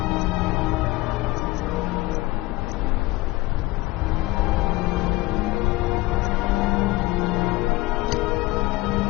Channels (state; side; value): quieter; right; 20.1 dB